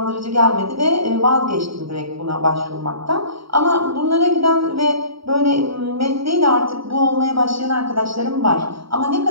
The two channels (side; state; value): left; late; 0.75 ms